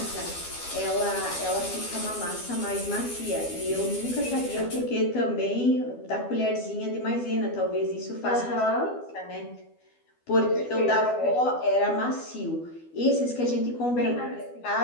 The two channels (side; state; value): right; late; 12 ms